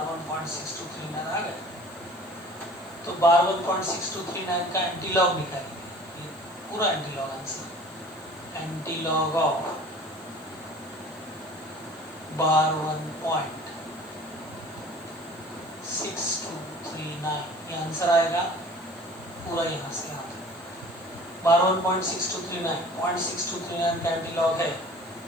1.6239 आ गया, तो बार 1.6239 का एंटीलॉग निकालेंगे, ये पूरा antilog answer, antilog of bar 1.6239 ये आंसर आएगा पूरा, यहाँ से आता है बार 1.6239 का एंटीलॉग है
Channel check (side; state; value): left; noise; hiss, 26 dB below the sound